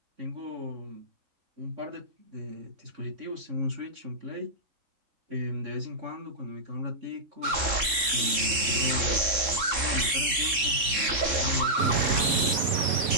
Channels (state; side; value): late; left; 3.7 ms